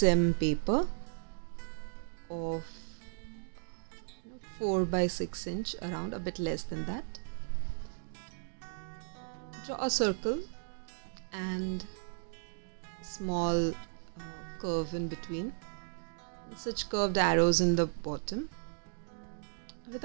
paper of 4 by 6 inch, around a bit less than that. Draw a circle and small curve in between, and such curved arrows in the bottom with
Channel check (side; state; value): left; silent; digital silence